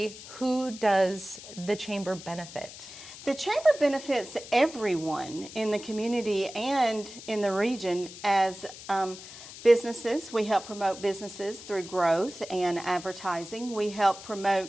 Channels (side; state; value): left; noise; hiss, 15 dB below the sound